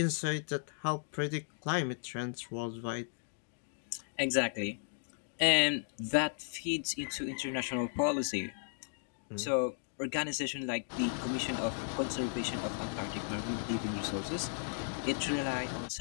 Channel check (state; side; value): silent; right; digital silence